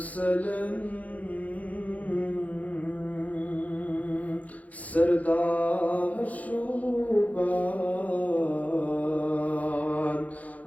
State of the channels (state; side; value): late; right; 0.072 ms